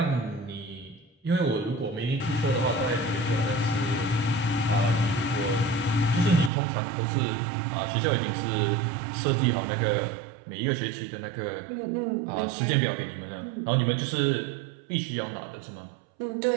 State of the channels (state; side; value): drops out; left; at 6.5 s